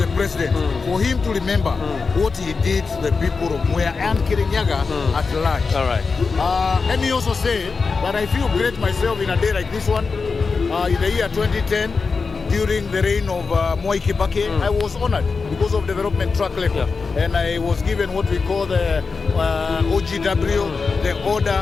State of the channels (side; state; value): right; quieter; 4.7 dB